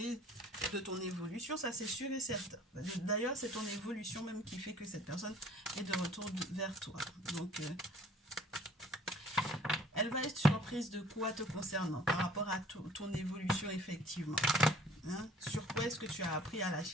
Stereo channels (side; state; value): both; normal; correlation 0.53